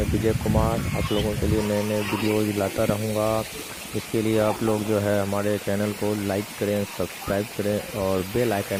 विजय कुमार आप लोगों के लिए नए नए वीडियोज़ लाता रहूँगा। इसके लिए आप लोग जो है हमारे चैनल को लाइक करें, सब्सक्राइब करें और बेल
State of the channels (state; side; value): identical; both; correlation 1.00